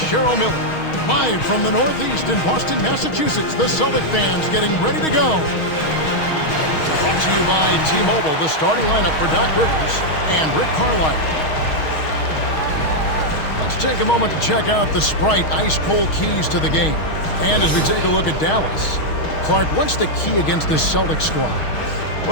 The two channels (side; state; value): right; late; 6.4 ms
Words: Cheryl Miller. Live from the Northeast in Boston, Massachusetts, the Celtic fans getting ready to go. Brought to you by T-Mobile, the starting lineup for Doc Rivers and Rick Carlisle. Let's take a moment to check out the Sprite ice-cold keys to the game. And as we take a look at Dallas, Clark, what's the key against this Celtic squad?